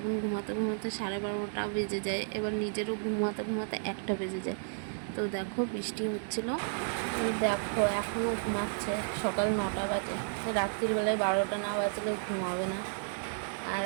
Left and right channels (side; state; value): left; silent; digital silence